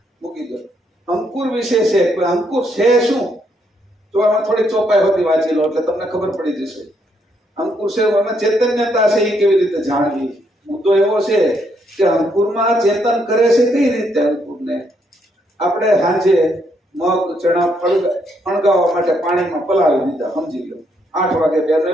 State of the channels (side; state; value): both; normal; correlation 0.74